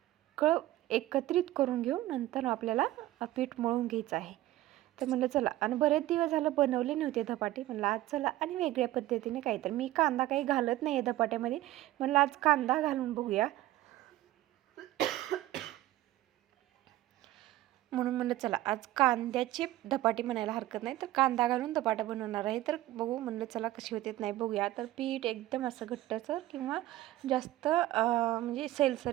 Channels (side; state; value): left; quieter; 15.6 dB